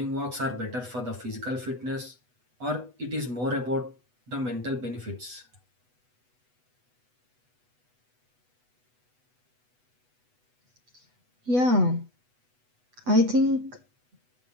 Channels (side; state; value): left; late; 8.1 ms